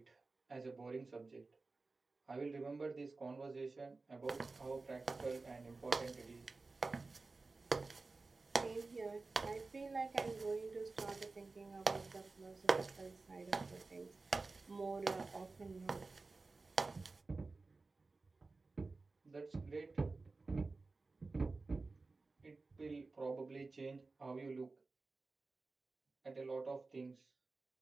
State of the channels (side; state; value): left; quieter; 3.7 dB